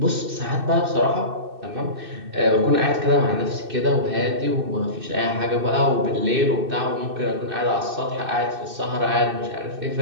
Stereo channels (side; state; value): left; late; 2.6 ms